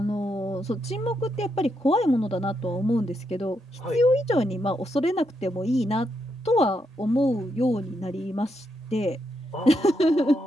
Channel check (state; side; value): normal; both; correlation 0.81